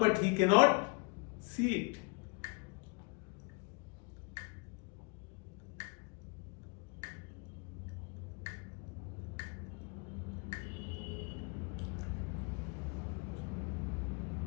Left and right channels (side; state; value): right; quieter; 30.5 dB